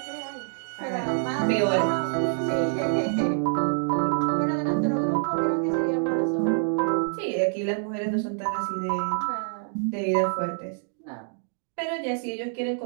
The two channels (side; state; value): left; silent; digital silence